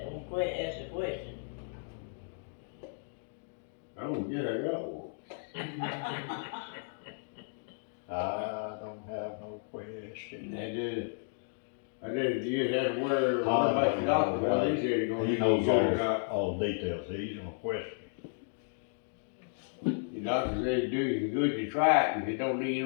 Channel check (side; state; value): right; silent; digital silence